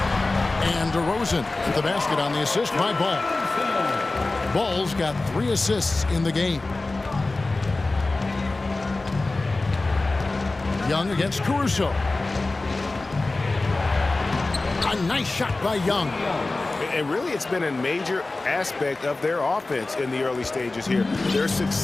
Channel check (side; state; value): right; quieter; 3.2 dB